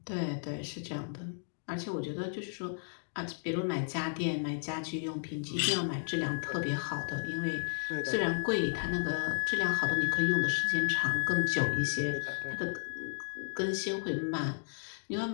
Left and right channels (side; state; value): right; silent; digital silence